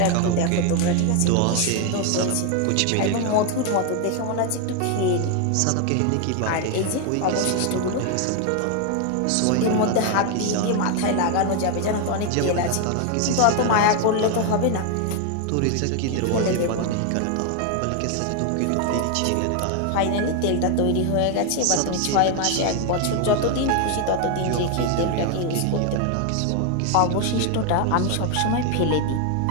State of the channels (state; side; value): different; both; correlation 0.01